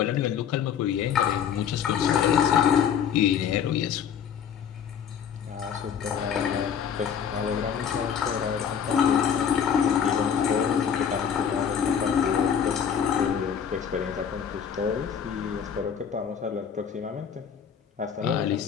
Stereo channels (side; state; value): right; quieter; 7.9 dB